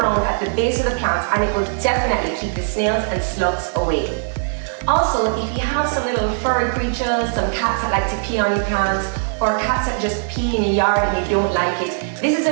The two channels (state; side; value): silent; left; 58 dB below the other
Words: at the base of the plants, and it will definitely keep the snails and slugs away. Also, if you have some little furry creatures, some cats that like to pee on your plants, or cats that just pee in your yard and you don't like it, this is a